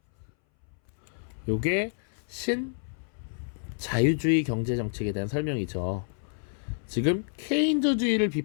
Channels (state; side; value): silent; right; 59 dB below the other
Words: 요게 신자유주의 경제정책에 대한 설명이죠. 지금 케인즈주의를